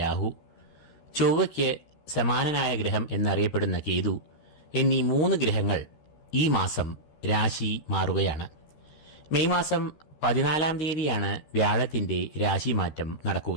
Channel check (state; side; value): late; right; 13 ms